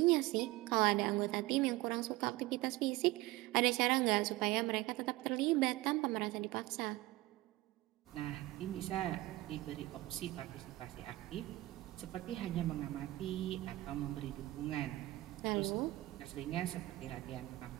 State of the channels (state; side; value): quieter; left; 18.7 dB